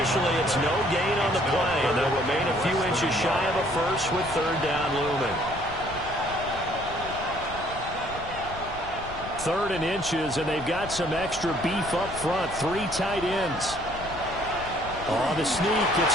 it's no gain on the play, and they'll remain a few inches shy of a first with 3rd down looming. 3rd and inches, and they've got some extra beef up front. 3 tight ends. On the sneak, it's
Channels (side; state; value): left; noise; rumble, 13 dB below the sound